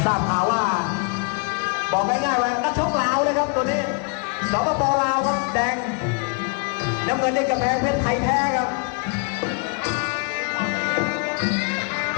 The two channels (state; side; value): quieter; right; 36.5 dB